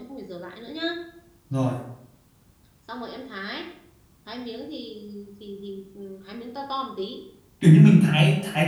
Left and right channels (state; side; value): identical; both; correlation 1.00